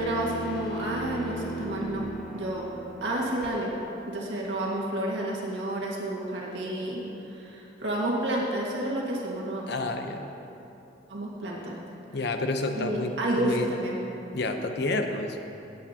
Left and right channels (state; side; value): normal; both; correlation 0.37